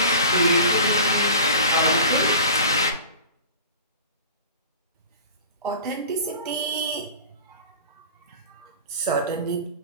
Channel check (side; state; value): both; inverted; correlation -0.38